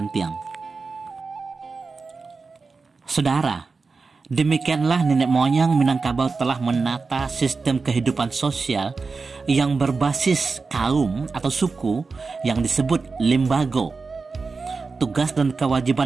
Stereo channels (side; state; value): left; quieter; 4.4 dB